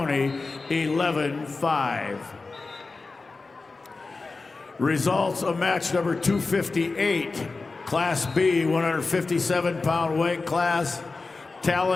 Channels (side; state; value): right; quieter; 3.8 dB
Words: 11-5. Results of match number 258, Class B, 157-pound weight class.